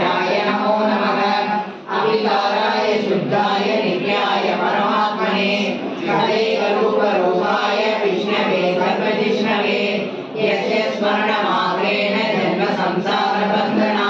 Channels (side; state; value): both; identical; correlation 1.00